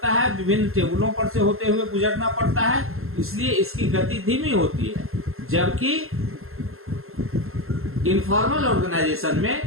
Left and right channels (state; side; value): late; left; 0.62 ms